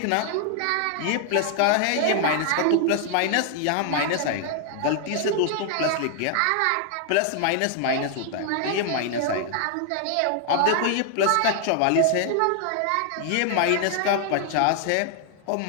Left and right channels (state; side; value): different; both; correlation 0.00